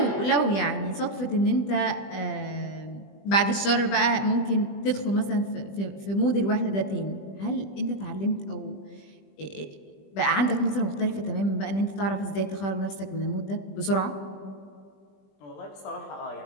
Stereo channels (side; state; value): right; late; 20 ms